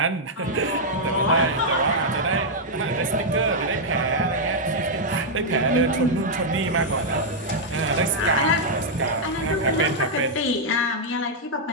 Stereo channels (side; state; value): both; normal; correlation -0.04